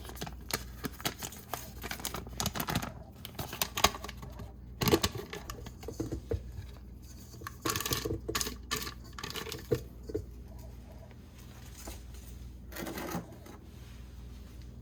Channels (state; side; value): identical; both; correlation 1.00